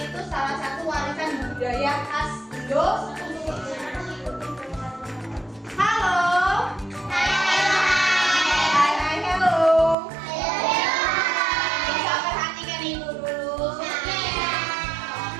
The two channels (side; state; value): left; drops out; at 10.0 s